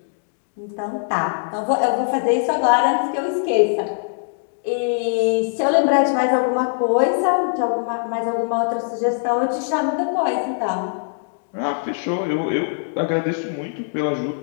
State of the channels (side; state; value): right; silent; digital silence